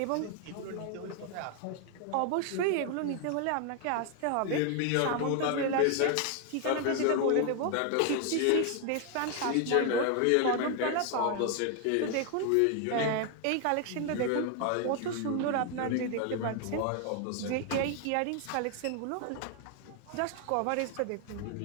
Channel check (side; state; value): both; different; correlation 0.00